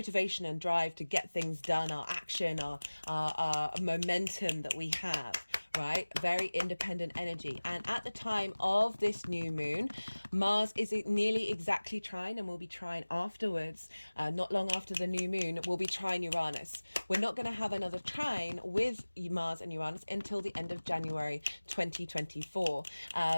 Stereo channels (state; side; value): inverted; both; correlation -1.00